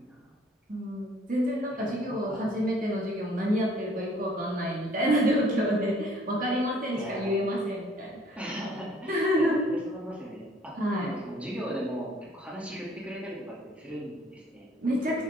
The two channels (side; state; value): both; normal; correlation 0.58